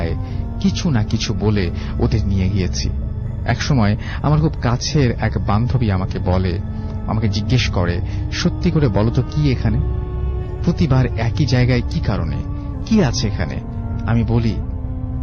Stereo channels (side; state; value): both; identical; correlation 1.00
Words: কিছু না কিছু বলে ওদের নিয়ে গিয়েছি। একসময় আমার খুব কাছের এক বান্ধবী আমাকে জিজ্ঞেস করে, সত্যি করে বলো তো কি এখানে? প্রতিবার একই জায়গায় কি কারণে, কি আছে এখানে? আমি বলি